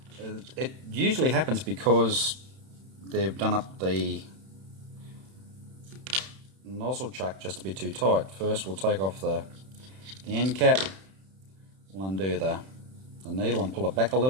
it usually happens because they've done up the nozzle chuck just a bit too tight. First we'll take off the end cap, we'll undo the needle and pull it back a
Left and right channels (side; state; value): left; late; 31 ms